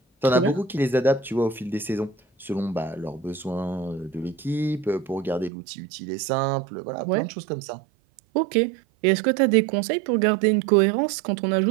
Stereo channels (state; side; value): drops out; left; at 5.5 s